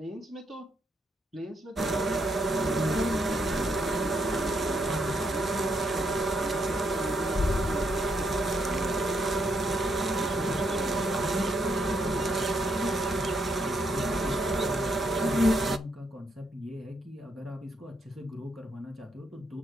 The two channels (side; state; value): both; normal; correlation 0.76